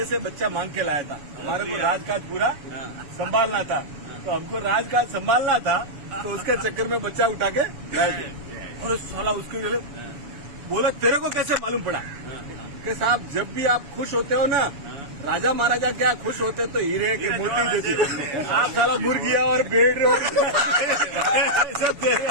से बच्चा मांग के लाया था। हमारे को राजकाज पूरा संभालना था, तो हमको राजकाज संभालना था, तो उसके चक्कर में बच्चा उठा के लाए थे। और साला उसके लिए बोला तेरे को कैसे मालूम पड़ा? कि साहब जब भी आप खुश होते हो ना, राजा महाराजा क्या खुश होते तो हीरे की मोती देते, आप साला मुर्गिया और भेड़ और सब दे रहे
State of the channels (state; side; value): late; left; 7.1 ms